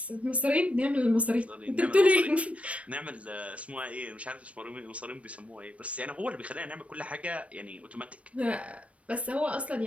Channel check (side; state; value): left; late; 0.064 ms